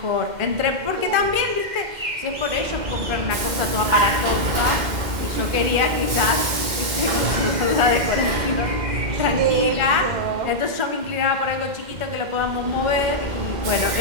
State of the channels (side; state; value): left; late; 2.1 ms